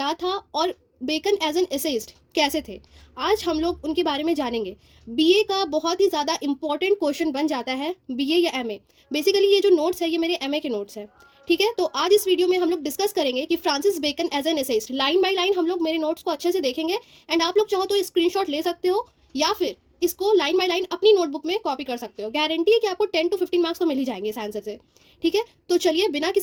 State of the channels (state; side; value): identical; both; correlation 1.00